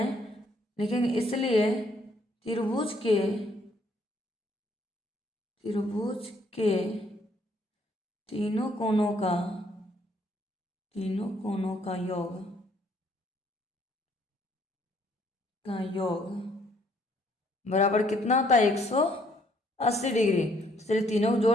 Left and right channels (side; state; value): both; normal; correlation 0.66